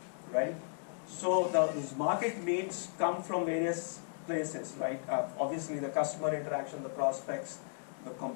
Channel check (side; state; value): right; silent; 54 dB below the other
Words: right? So those market needs come from various places, right? Obviously the customer interaction, the prospects, the